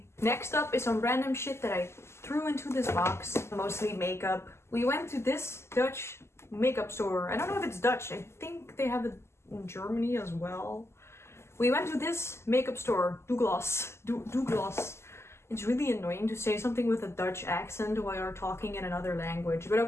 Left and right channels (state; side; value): late; right; 0.13 ms